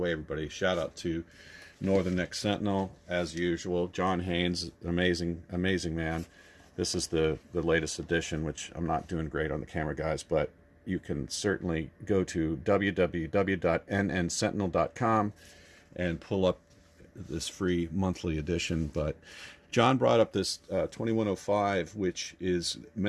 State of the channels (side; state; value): both; identical; correlation 1.00